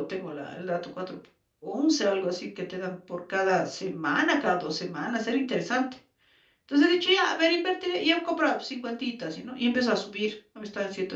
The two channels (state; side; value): identical; both; correlation 1.00